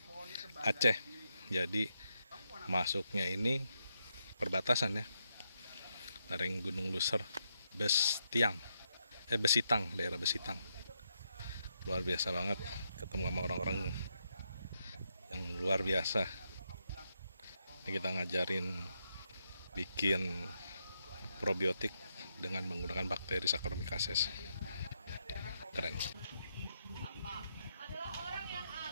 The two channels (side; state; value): both; inverted; correlation -0.81